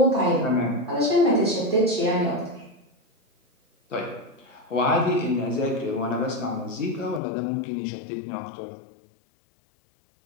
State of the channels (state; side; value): drops out; right; at 7.2 s